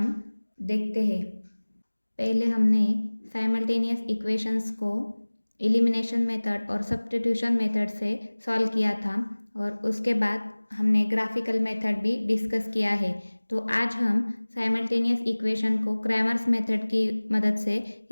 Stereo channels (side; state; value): both; inverted; correlation -1.00